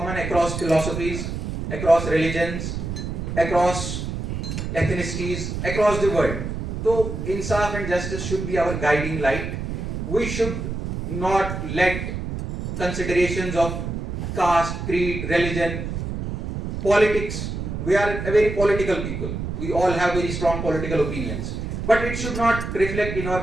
across philosophies, across religions, across ethnicities, across the world. So insaf and justice should be our guiding light. We should not let considerations of caste, creed, religion, politics. We are a very political people. We all have very strong political opinions. But it should not reflect in our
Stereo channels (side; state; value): right; noise; rumble, 4 dB below the sound